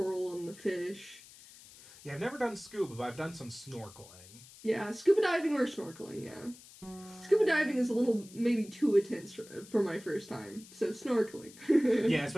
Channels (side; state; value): left; noise; hiss, 20 dB below the sound